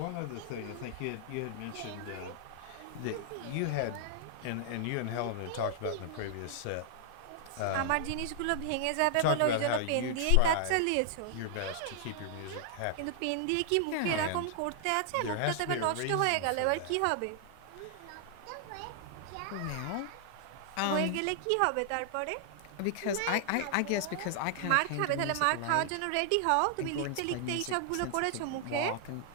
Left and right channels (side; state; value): both; different; correlation -0.01